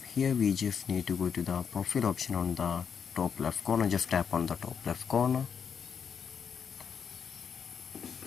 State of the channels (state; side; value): quieter; right; 6.9 dB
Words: here we just need to go to the profile option on the top left corner. Just tap on the top left corner.